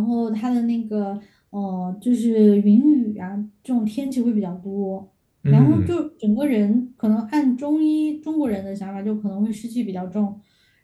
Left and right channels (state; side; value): identical; both; correlation 1.00